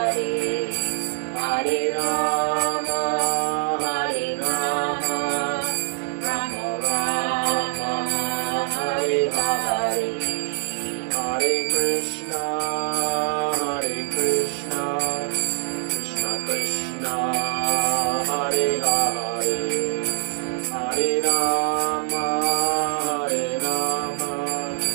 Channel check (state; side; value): silent; left; digital silence